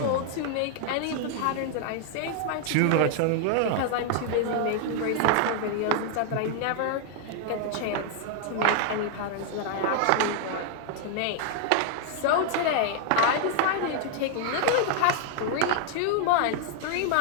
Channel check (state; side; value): different; both; correlation 0.00